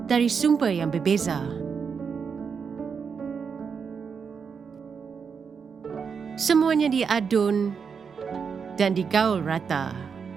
dari sumber yang berbeza. Semuanya diadun dan digaul rata.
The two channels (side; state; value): left; quieter; 6.1 dB